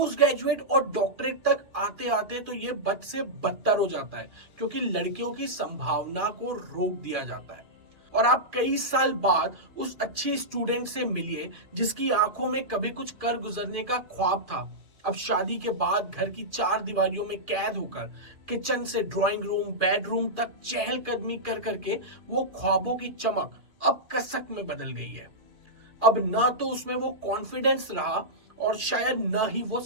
ग्रेजुएट और डॉक्टरेट तक आते आते तो ये बद से बदतर हो जाता है, क्योंकि लड़कियों की संभावना को रोक दिया जाता है। और आप कई साल बाद उस अच्छी स्टूडेंट से मिलिए जिसकी आंखों में कभी कुछ कर गुजरने का ख्वाब था। अब शादी के बाद घर की चार दीवारियों में कैद होकर किचन से ड्राइंग रूम बेडरूम तक चहलकदमी कर करके वो ख्वाबों की चमक अब कसक में बदल गई है। अब ना तो उसमें वो कॉन्फिडेंस रहा और शायद ना ही वो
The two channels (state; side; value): late; left; 2.4 ms